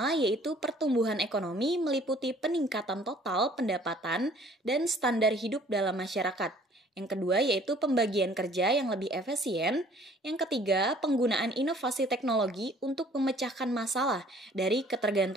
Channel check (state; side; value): normal; both; correlation 0.56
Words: yaitu pertumbuhan ekonomi meliputi peningkatan total pendapatan dan standar hidup dalam masyarakat. Yang kedua yaitu pembagian kerja yang lebih efisien. Yang ketiga, penggunaan inovasi teknologi untuk memecahkan masalah dari